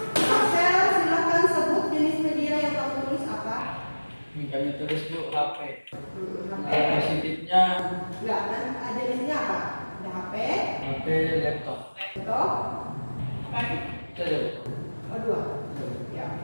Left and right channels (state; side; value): inverted; both; correlation -1.00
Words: Marcel silakan sebut jenis media yang kamu tulis apa? Kami tulis Bu HP. HP. Positifnya Enggak, dan jenisnya apa? Ada HP, HP laptop. laptop, Itu aja Bu. oh 2. Ya,